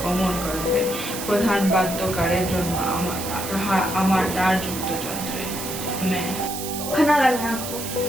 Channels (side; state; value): right; noise; hiss, 7 dB below the sound